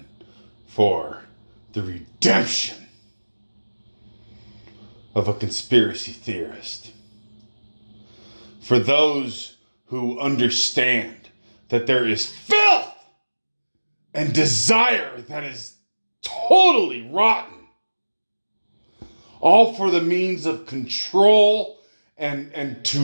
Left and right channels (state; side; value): inverted; both; correlation -1.00